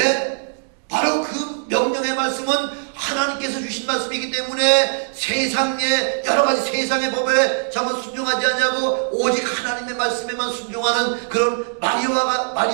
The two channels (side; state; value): left; silent; digital silence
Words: 바로 그 명령의 말씀은 하나님께서 주신 말씀이기 때문에 세상의 여러 가지 세상의 법에 전부 순종하지 않냐고 오직 하나님의 말씀에만 순종하는 그런